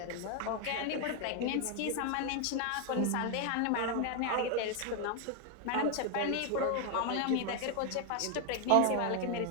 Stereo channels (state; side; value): different; both; correlation 0.00